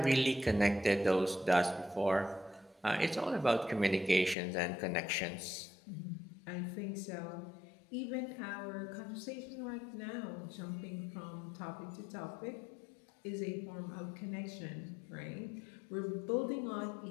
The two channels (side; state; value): right; drops out; at 4.4 s